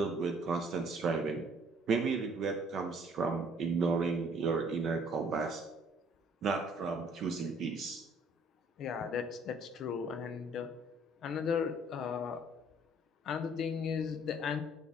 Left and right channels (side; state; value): both; normal; correlation 0.59